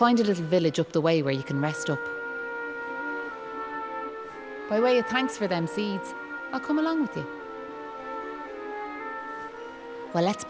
a little village up the way where you can rest up. By way of thanks for them seeds, I'll come along with you. Well, let's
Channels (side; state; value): both; identical; correlation 1.00